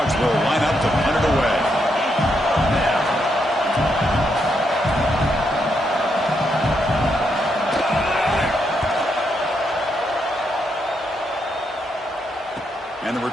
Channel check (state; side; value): normal; both; correlation 0.79